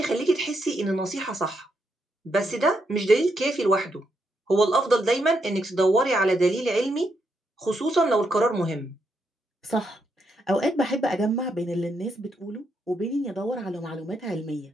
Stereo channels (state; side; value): normal; both; correlation 0.79